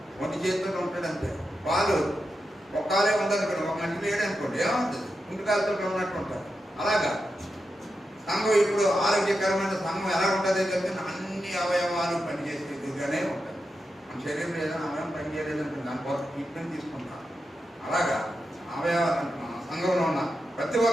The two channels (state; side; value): normal; both; correlation 0.88